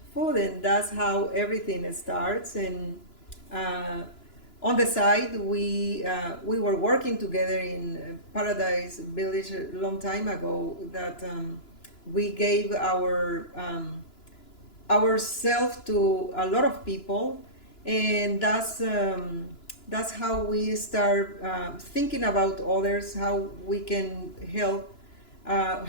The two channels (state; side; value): late; right; 2.9 ms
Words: food, and that's how everything starts. And uh, on the side, we were working together in Paradise Village a long time ago. That we gave ourselves to a lot of people, and that's how we start thinking about others, how we can help,